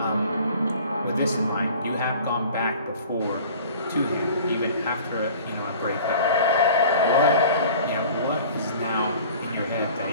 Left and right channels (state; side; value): inverted; both; correlation -0.45